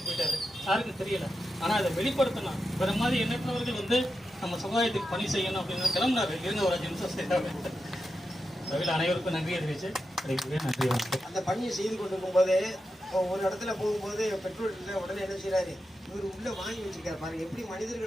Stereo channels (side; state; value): both; normal; correlation 0.89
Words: போயிட்டாரு. யாருக்கும் தெரியல. ஆனால் அதை வெளிப்படுத்தணும். வேற மாதிரி எண்ணற்றவர்கள் வந்து நம்ம சமுதாயத்துக்கு பணி செய்யணும் அப்படின்னு கிளம்புனாரு. இருந்த ஒரு 5 நிமிஷம் செய்தாங்க. தவிர அனைவருக்கும் நன்றி அறிவிச்சு நன்றி. அந்த பணியை செய்து கொண்டிருக்கும் போதே ஒரு இடத்துல போகும்போது பெட்ரோல் இல்லை, உடனே என்ன செய்யறாரு, இவர் உள்ள வாங்கி வச்சிருக்காரு பாருங்க. எப்படி